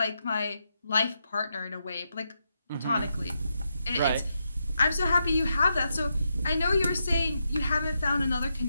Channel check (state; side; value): inverted; both; correlation -0.84